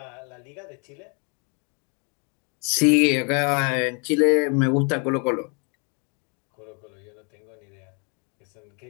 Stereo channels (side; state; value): right; quieter; 36.5 dB